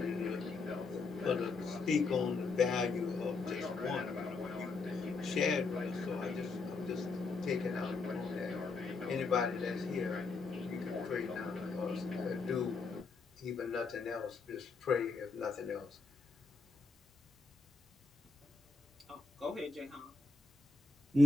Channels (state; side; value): quieter; right; 3.9 dB